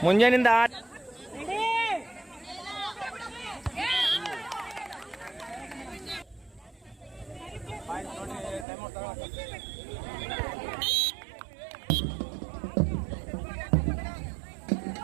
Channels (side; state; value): left; drops out; at 8.7 s